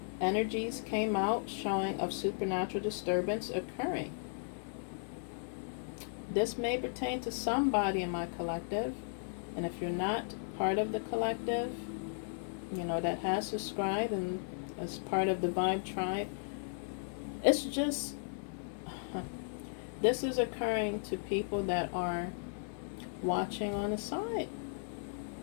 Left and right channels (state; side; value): silent; right; 54 dB below the other